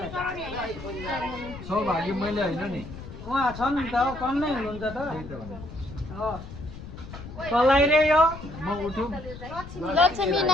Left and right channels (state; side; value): noise; left; rumble, 13 dB below the sound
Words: सौभाग्य मैले होइन नि उहाँ छन् नि त कन्नै हुनुहुन्छ त कसलाई रे यो म उठौँ लक्ष्मी